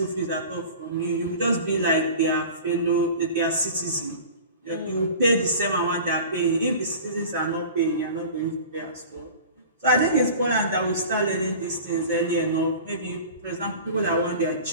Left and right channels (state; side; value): inverted; both; correlation -0.39